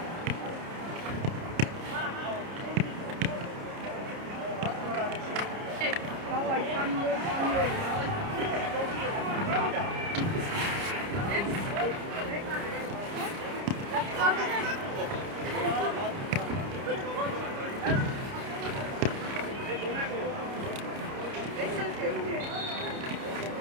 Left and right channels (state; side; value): late; left; 30 ms